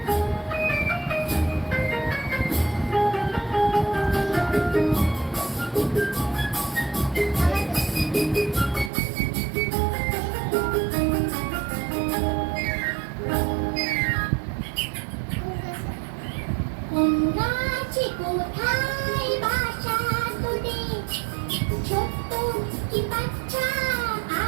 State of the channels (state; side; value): drops out; left; at 8.9 s